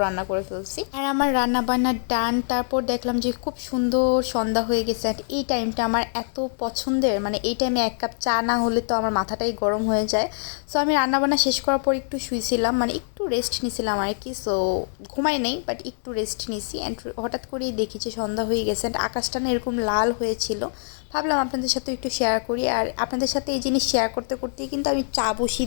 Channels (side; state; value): right; silent; digital silence